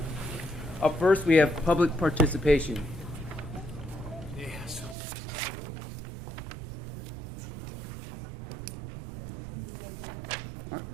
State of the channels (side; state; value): left; drops out; at 5.0 s